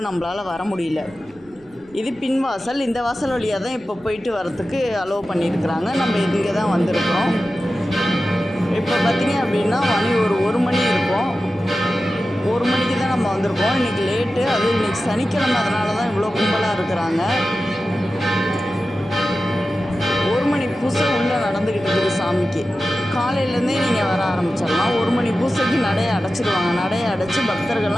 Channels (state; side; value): noise; right; rumble, 29 dB below the sound